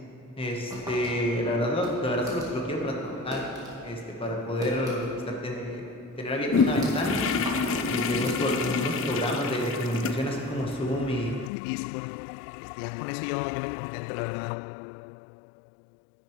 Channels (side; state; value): right; drops out; at 11.5 s